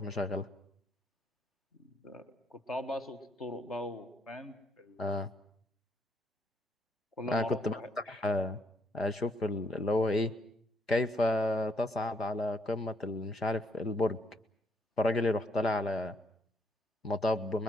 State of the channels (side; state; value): both; normal; correlation 0.71